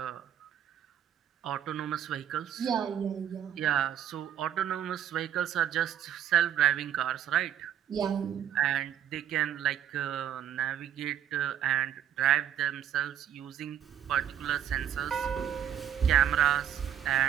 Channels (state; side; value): quieter; left; 9.9 dB